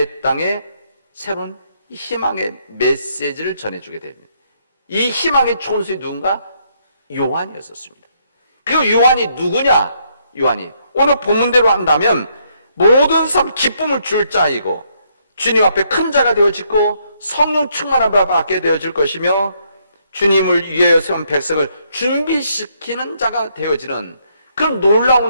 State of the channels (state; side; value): inverted; both; correlation -0.72